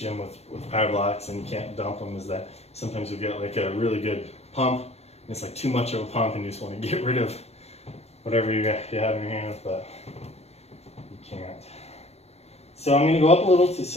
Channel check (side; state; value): right; late; 0.31 ms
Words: with power blocks and you can't dump them is that sometimes you get like a really good pump and it's like too much of a pump and you just want to get rid of whatever you have in your hands, but you can't. So I'm going to go up a little to